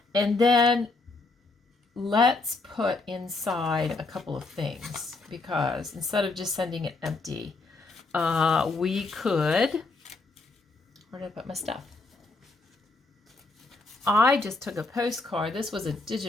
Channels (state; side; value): quieter; right; 3.4 dB